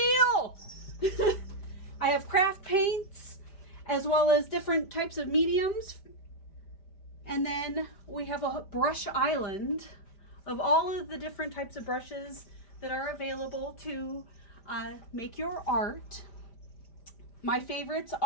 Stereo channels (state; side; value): late; right; 5.0 ms